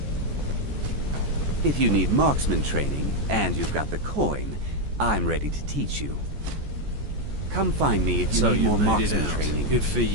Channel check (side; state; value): left; late; 14 ms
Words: If you need marksman training, and you've got the coin, I'm ready to teach you. Come find me if you need more marksman training. Good for